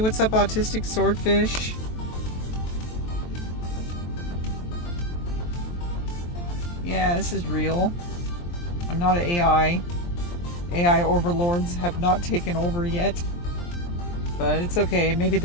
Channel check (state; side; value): late; right; 23 ms